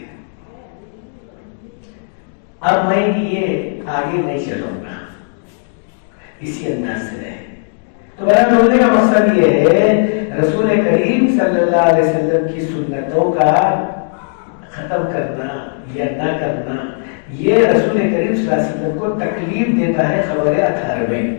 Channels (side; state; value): right; silent; digital silence